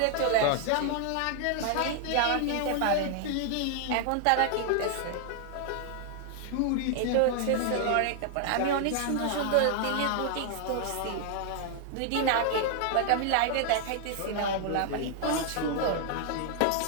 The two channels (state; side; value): different; both; correlation 0.00